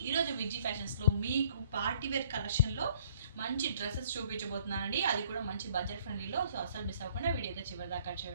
ఈరోజు విజీ ఫ్యాషన్స్లో మీకు party wear కలెక్షన్లో మంచి డ్రెస్సెస్ చూపించబోతున్నానండి. అది కూడా మంచి బడ్జెట్ ఫ్రెండ్లీలో. సో అసలు మిస్ అవ్వకుండా వీడియో అయితే చివరి దాకా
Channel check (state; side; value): inverted; both; correlation -0.59